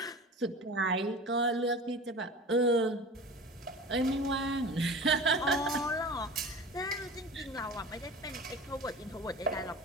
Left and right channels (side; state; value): both; normal; correlation 0.36